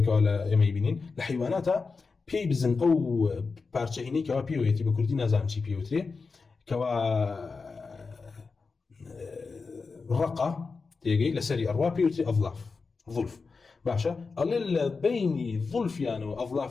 كوا يميبينين لحيواناتا بي بزن أو بارشهيني كوا بيويتي بكردي نازام شي بيوتري كوا رقة تيجي لسري أروا بيوتري أظلاف ظلف باشا اللي بين ظلفيان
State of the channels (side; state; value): right; quieter; 4.5 dB